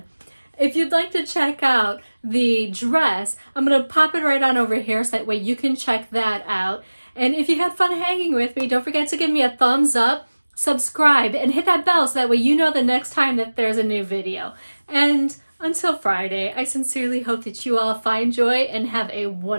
If you'd like to check out the dress, I'm gonna pop it right on over here so that way you can check that out. And if you had fun hanging with me, don't forget to give me a thumbs up, subscribe, and hit that bell so that way you know the next time that there's a new video. And until Friday, I sincerely hope that you all find joy and have a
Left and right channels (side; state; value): both; inverted; correlation -1.00